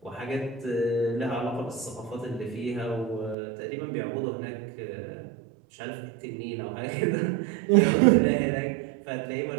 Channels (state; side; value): drops out; left; at 3.4 s